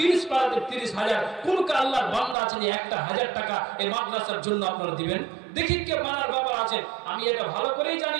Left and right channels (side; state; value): left; drops out; at 2.4 s